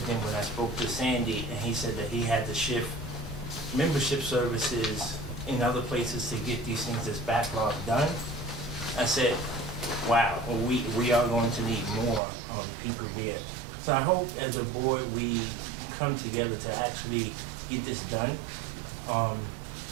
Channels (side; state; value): left; drops out; at 12.2 s